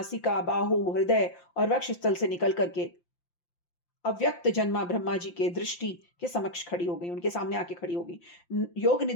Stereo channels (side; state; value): right; late; 5.8 ms